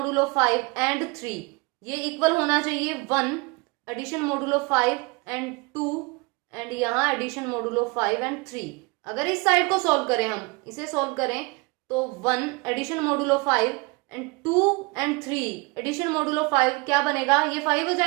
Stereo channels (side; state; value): left; quieter; 27.1 dB